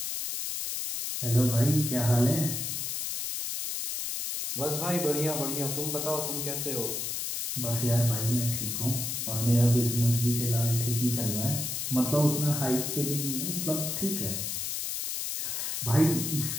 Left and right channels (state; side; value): noise; left; hiss, 3 dB below the sound